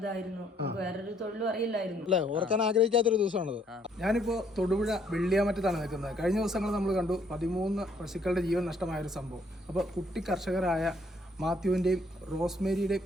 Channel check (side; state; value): both; normal; correlation 0.66